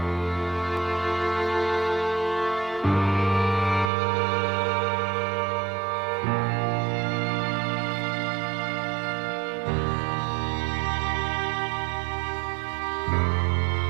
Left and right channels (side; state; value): left; drops out; at 3.9 s